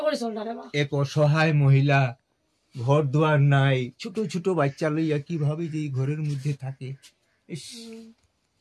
এক অসহায় মহিলা, ঘর দুয়ার নাই, ছোট ছোট বাচ্চা লইয়া কিভাবে যে ঘরের মধ্যে থাকে, ইস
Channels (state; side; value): identical; both; correlation 1.00